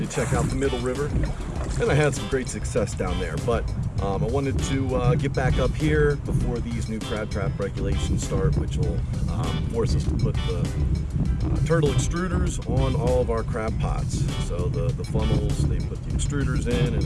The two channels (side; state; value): both; identical; correlation 1.00